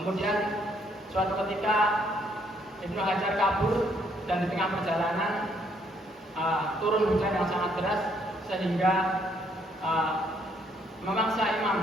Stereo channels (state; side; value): normal; both; correlation 0.69